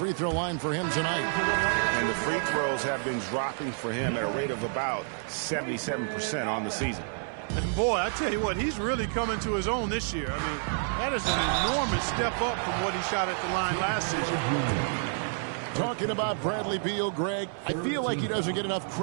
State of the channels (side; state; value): left; silent; 59 dB below the other